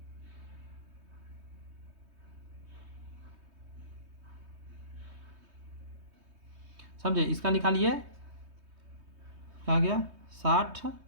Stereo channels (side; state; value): left; late; 3.2 ms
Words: समझे, इसका निकालिए, क्या गया 60,